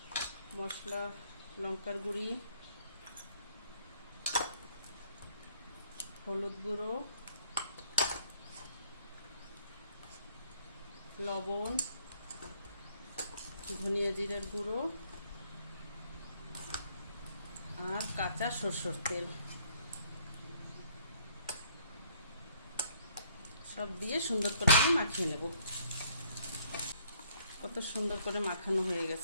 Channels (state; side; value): inverted; both; correlation -0.64